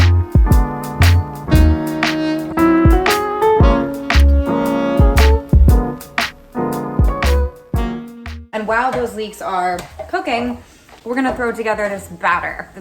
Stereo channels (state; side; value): identical; both; correlation 1.00